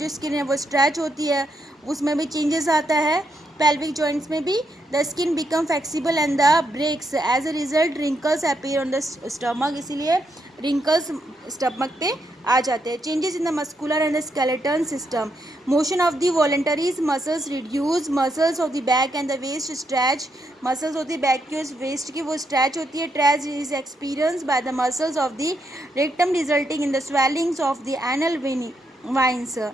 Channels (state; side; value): normal; both; correlation 0.79